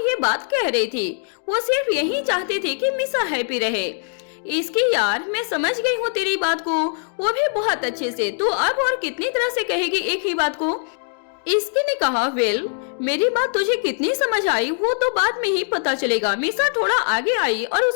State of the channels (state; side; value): silent; right; digital silence